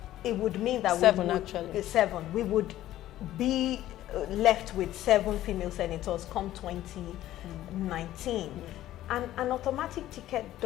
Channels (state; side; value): quieter; right; 13.9 dB